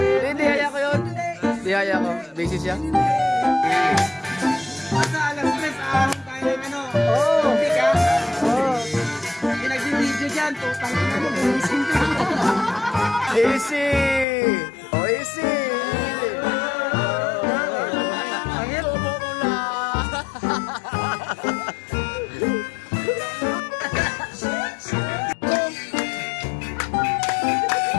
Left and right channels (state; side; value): drops out; right; at 14.2 s